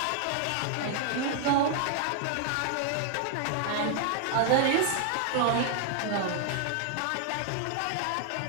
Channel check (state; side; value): different; both; correlation 0.00